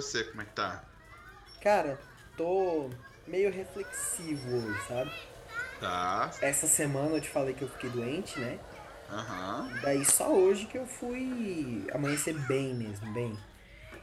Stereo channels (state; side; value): identical; both; correlation 1.00